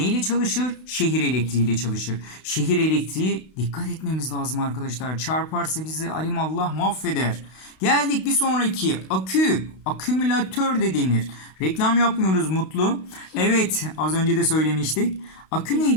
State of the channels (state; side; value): late; right; 32 ms